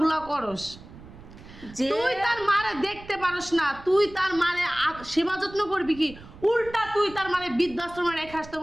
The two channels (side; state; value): right; noise; rumble, 18 dB below the sound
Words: করস, যে তুই তার মারে দেখতে পারস না, তুই তার মারে সেবা যত্ন করবি কি? উল্টা তুই তার মারে বৃদ্ধাশ্রমে রেখে আসতে